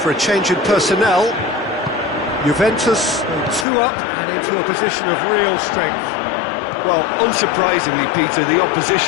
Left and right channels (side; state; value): right; drops out; at 3.7 s